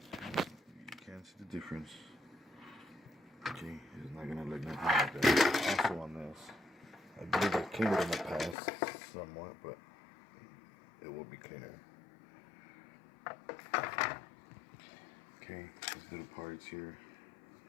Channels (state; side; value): drops out; right; at 8.6 s